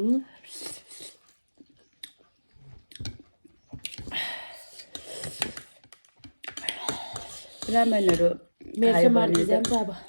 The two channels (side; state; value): both; inverted; correlation -1.00